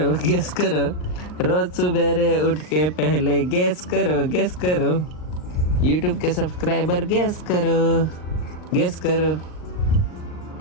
रोज सवेरे उठ के पहले गैस करो YouTube के सब्सक्राइबर गैस करो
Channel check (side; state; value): right; late; 39 ms